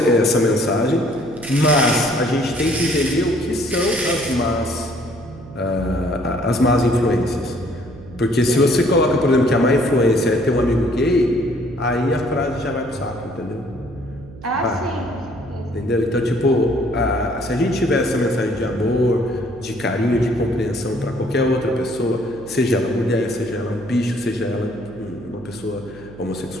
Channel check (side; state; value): right; noise; hum, 18 dB below the sound